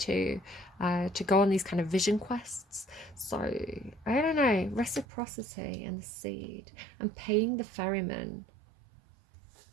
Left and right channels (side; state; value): left; drops out; at 5.1 s